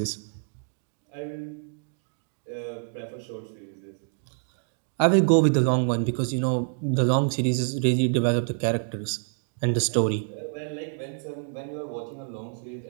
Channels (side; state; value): left; silent; digital silence